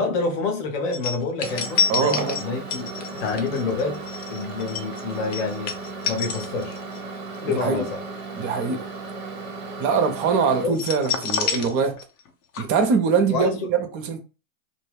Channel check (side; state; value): right; late; 2.1 ms